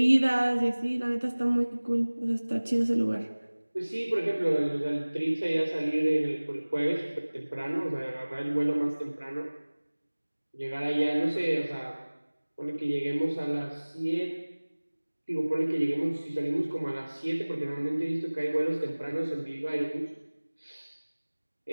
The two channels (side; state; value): both; inverted; correlation -1.00